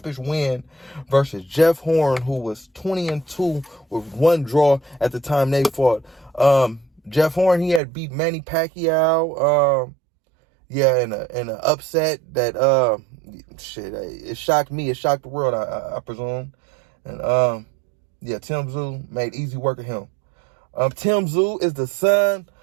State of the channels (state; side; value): drops out; left; at 7.8 s